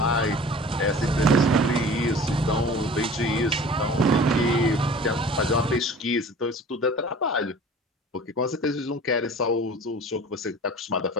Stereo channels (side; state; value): both; normal; correlation 0.43